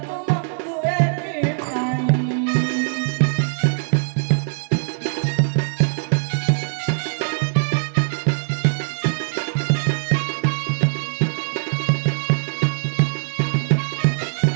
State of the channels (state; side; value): silent; left; digital silence